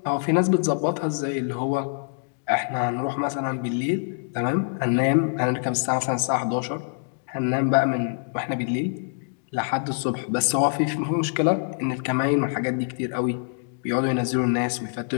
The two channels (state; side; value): silent; right; digital silence